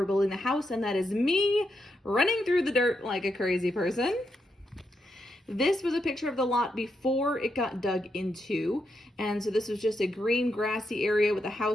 building the house, and that is me running through the dirt like a crazy person. This was a picture of the lot before it got dug into. And so this was just a green grassy area with a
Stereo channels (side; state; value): both; normal; correlation 0.83